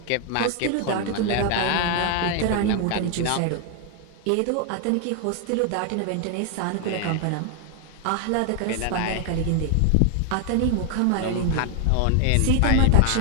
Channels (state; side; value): different; both; correlation 0.00